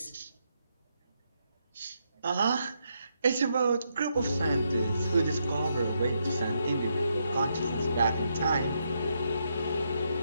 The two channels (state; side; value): inverted; both; correlation -0.79